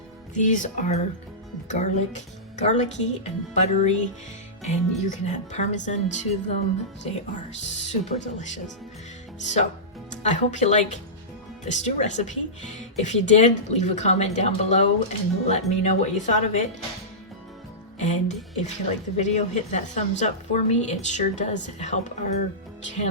These are garlicky and buttery, and you can add Parmesan to them. They are super delicious. So I hope you like the stew recipe. If you did, leave a comment down below and let me know what you thought of it. And if you like the video, hit that thumbs up for me. It sure does help our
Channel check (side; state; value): both; normal; correlation -0.17